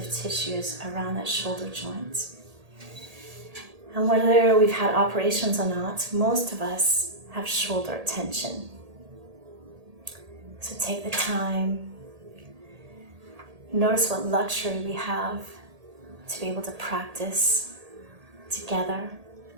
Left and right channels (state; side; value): late; left; 1.8 ms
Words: tissues around that shoulder joint. And whether we've had operations or not, most of us have shoulder tension. So take the time. Notice what luxury we have to be able to practice together.